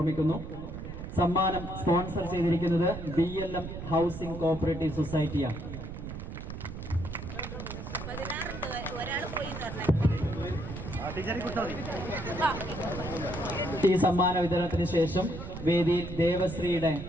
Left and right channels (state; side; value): noise; right; rumble, 8 dB below the sound